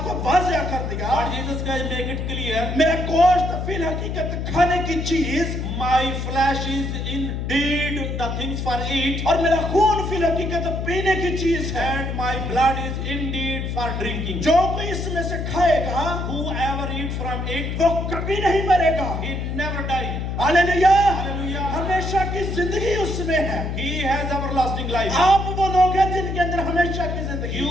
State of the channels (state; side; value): noise; left; hum, 3 dB below the sound